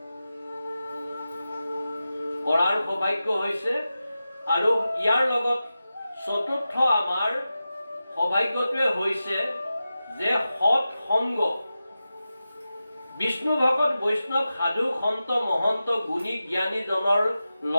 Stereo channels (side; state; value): both; inverted; correlation -0.93